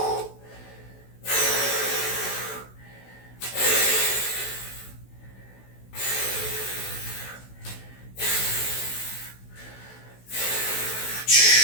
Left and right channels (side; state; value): right; late; 16 ms